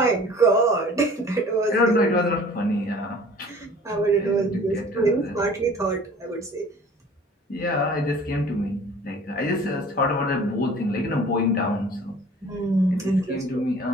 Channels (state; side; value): normal; both; correlation 0.48